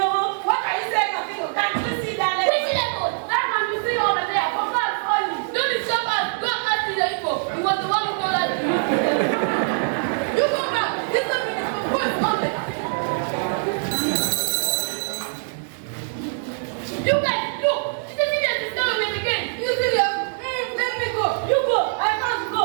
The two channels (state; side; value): silent; left; digital silence